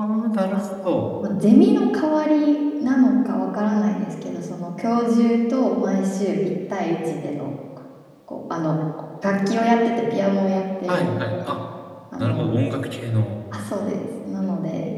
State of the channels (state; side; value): identical; both; correlation 1.00